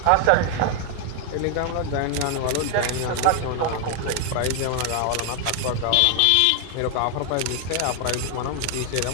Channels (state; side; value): different; both; correlation 0.00